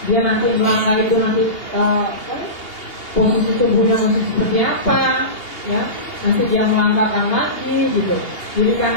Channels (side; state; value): right; late; 2.8 ms